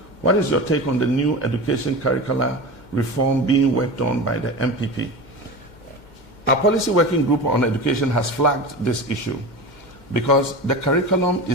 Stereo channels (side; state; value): right; late; 2.1 ms